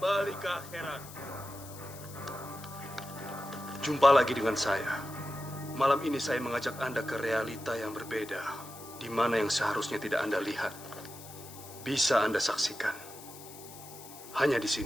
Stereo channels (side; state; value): left; noise; hiss, 16 dB below the sound